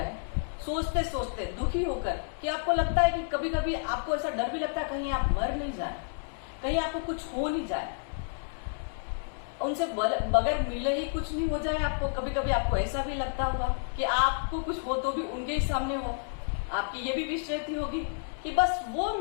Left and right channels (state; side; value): silent; right; 58 dB below the other